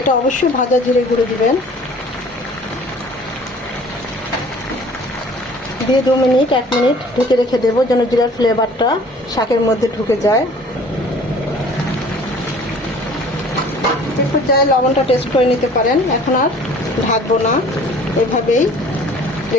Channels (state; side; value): normal; both; correlation 0.50